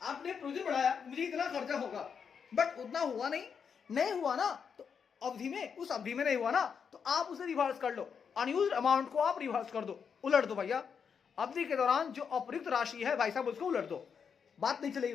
आपने प्रोविजन बढ़ाया, मुझे इतना खर्चा होगा, बट उतना हुआ नहीं हुआ ना, तो अवधि में, उस अवधि में नहीं हुआ ना, तो आप उसे रिवर्स कर लो, अनयूज्ड अमाउंट को आप रिवर्स कर दो, उलट दो भैया। अवधि के दौरान जो अप्रयुक्त राशि है भाई साहब उसको उलट दो, बात नहीं चलेगी,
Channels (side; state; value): right; quieter; 6.6 dB